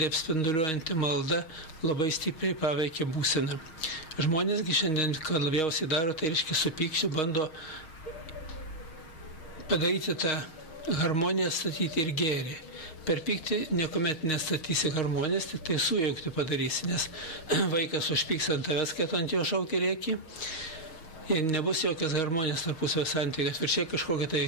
apspinduliuojanti malda labai stipriai paveikia būseną. Žmonėsgi šiandien, ką labiausiai daro, tai reiškia su pykčiu bando padaryti tą harmoniją, statyti ir gėrį. Per pyktį niekuomet nestatysi harmonijos, tik tai sujaukti padarysi, nes vaikas užpyks ant tavęs, kad ant jo šaukia rėki. Ir nebus jokios harmonijos tarpusavio santykių. Atvirkščiai kažkokia tai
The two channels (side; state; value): right; late; 6.4 ms